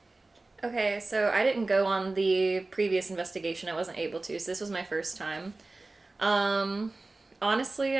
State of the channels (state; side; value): quieter; left; 3.2 dB